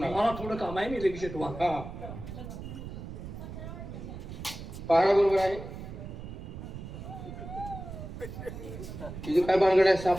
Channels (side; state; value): right; noise; rumble, 10 dB below the sound